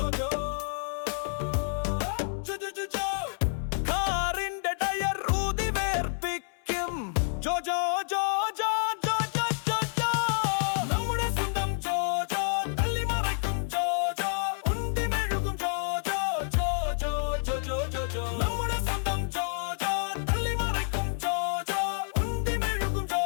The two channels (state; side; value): silent; right; 59 dB below the other